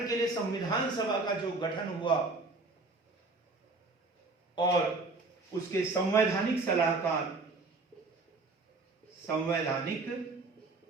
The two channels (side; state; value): left; quieter; 3.6 dB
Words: के लिए संविधान सभा का जो गठन हुआ, और उसके संवैधानिक सलाहकार